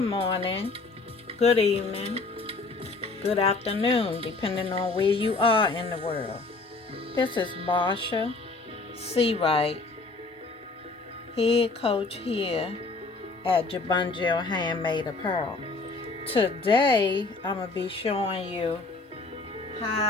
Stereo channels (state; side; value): quieter; right; 3.6 dB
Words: morning, good evening, good afternoon, depending on where you are in the world. This is Marsha C. Wright, head coach here at Jabungel Handmade Apparel. Today, I'm going to be showing you